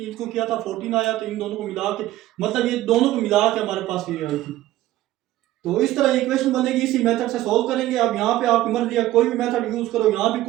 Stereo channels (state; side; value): quieter; left; 15.2 dB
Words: किया था 14 आया, तो इन दोनों को मिला के, मतलब ये दोनों को मिला के हमारे पास ये आई थी। तो इस तरह इक्वेशन बनेगी, इसी मेथड से सॉल्व करेंगे। अब यहाँ पे आपकी मर्जी है, कोई भी मेथड यूज करो, यहाँ भी